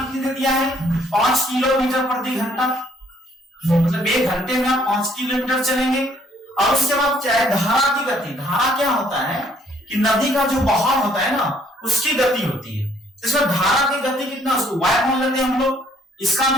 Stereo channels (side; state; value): both; normal; correlation 0.64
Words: दे दिया है? 5 किलोमीटर प्रति घंटा, मतलब 1 घंटे में आप 5 किलोमीटर चलेंगे। और उसके बाद चाहे धारा की गति, धारा क्या होता है कि नदी का जो बहाव होता है ना उसकी गति होती है। इसमें धारा की गति कितना, उसको y मान लेते हैं हम लोग। इसका